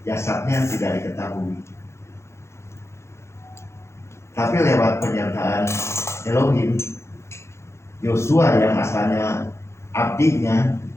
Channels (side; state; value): right; late; 0.13 ms